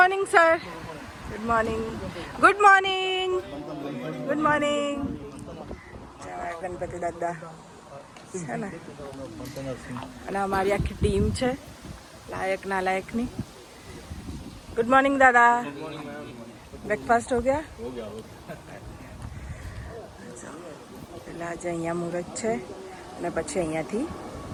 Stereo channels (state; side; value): identical; both; correlation 1.00